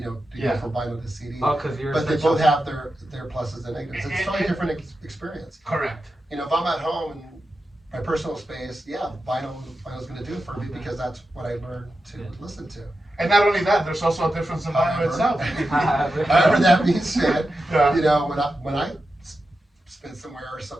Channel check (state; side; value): normal; both; correlation 0.90